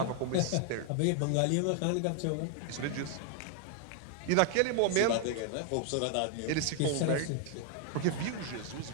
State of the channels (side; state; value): both; different; correlation 0.00